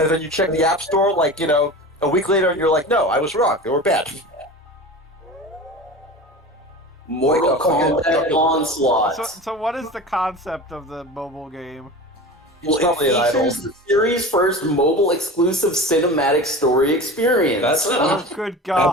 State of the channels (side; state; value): both; normal; correlation 0.33